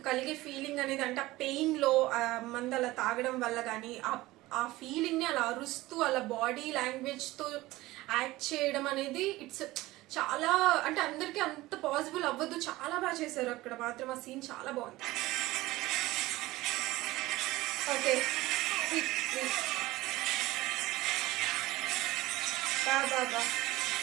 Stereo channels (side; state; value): left; quieter; 18.5 dB